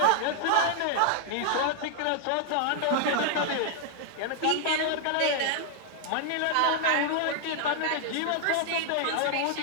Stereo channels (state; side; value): different; both; correlation 0.00